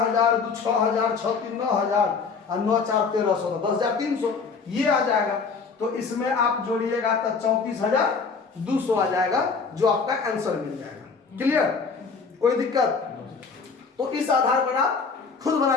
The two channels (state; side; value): quieter; right; 5.1 dB